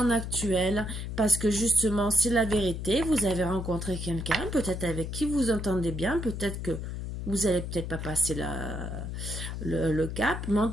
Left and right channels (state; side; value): noise; left; hum, 6 dB below the sound